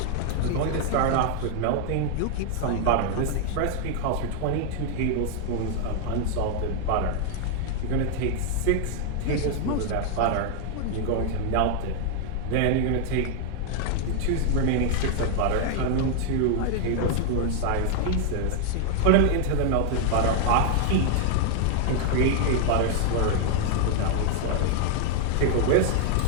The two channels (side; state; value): both; different; correlation 0.00